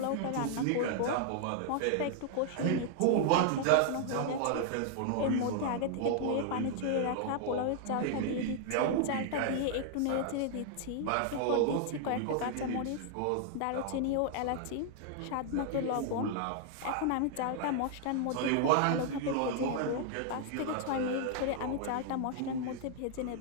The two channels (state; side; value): different; both; correlation 0.00